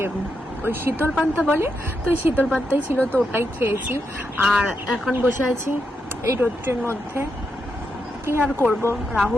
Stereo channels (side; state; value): both; normal; correlation 0.83